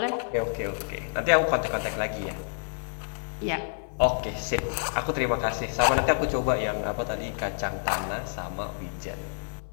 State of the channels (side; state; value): right; silent; digital silence